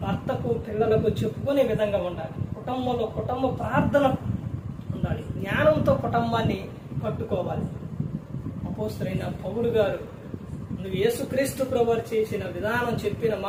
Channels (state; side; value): identical; both; correlation 1.00